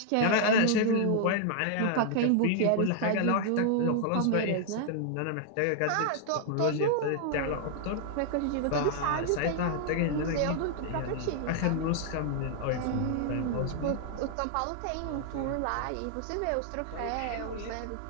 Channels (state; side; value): different; both; correlation 0.00